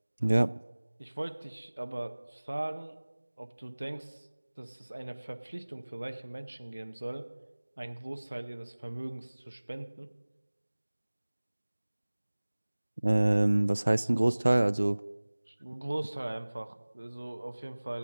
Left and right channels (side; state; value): both; inverted; correlation -1.00